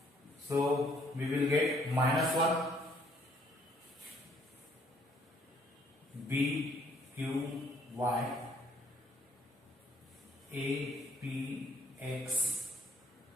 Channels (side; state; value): both; normal; correlation 0.64